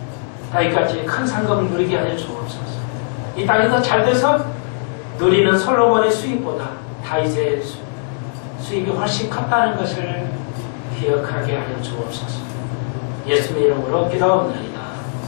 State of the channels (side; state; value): right; silent; digital silence